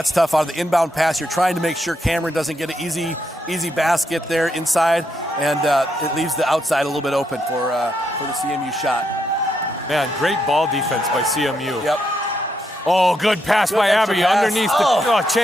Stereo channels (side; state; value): both; normal; correlation 0.79